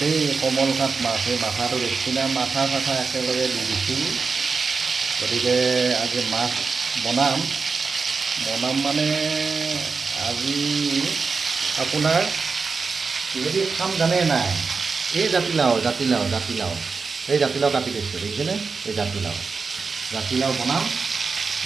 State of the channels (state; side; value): quieter; left; 4.8 dB